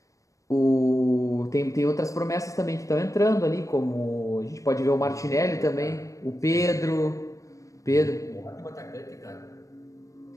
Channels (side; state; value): right; late; 0.16 ms